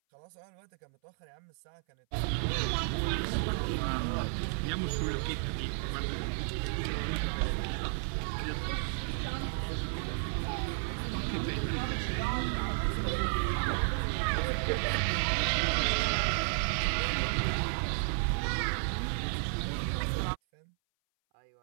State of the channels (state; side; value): silent; left; 56 dB below the other